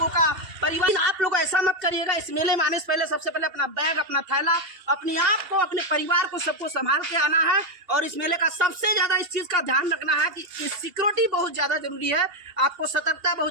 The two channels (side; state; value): left; late; 2.8 ms